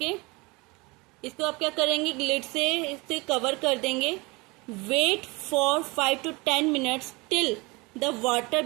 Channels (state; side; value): quieter; left; 25.6 dB